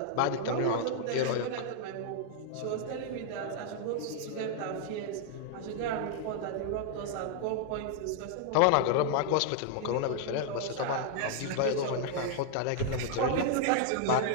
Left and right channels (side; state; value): both; different; correlation -0.01